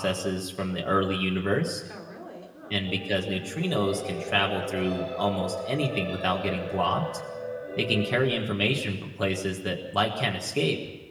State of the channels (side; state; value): both; identical; correlation 1.00